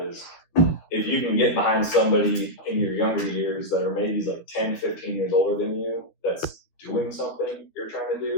is if you can get behind somebody in your younger years that are maybe like 10, 15 years older than you that's doing something you're trying to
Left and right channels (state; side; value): late; right; 12 ms